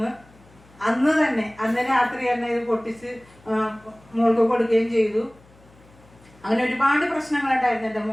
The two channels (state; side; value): noise; left; hum, 27 dB below the sound